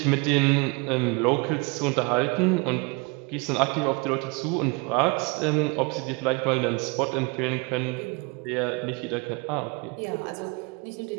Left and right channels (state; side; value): quieter; left; 29.1 dB